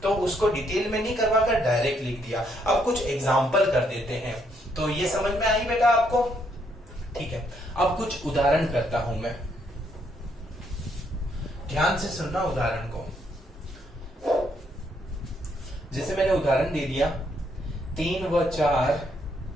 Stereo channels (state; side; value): normal; both; correlation 0.73